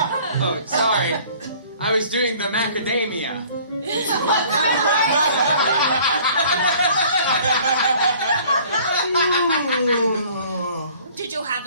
Oh, sorry. I was doing the macadamia. Did you have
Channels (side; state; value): both; inverted; correlation -0.53